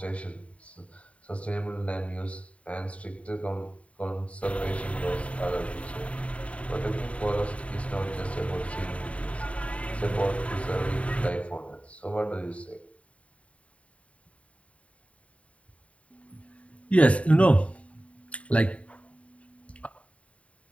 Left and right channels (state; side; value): late; right; 0.065 ms